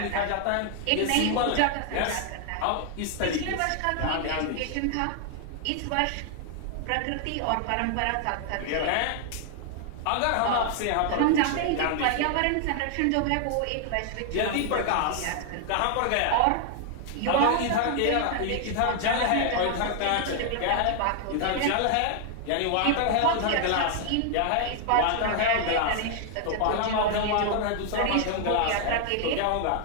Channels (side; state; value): both; different; correlation 0.00